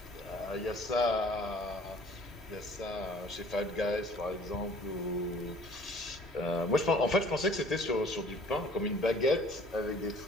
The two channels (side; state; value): both; normal; correlation 0.52